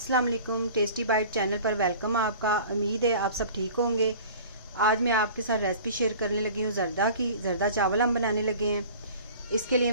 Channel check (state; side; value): inverted; both; correlation -0.43